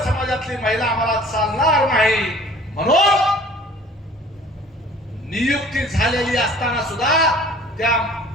समाजातली महिला आम्हाला चालणार नाही म्हणून नियुक्ती झालेली असताना सुद्धा त्या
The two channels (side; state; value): both; normal; correlation 0.50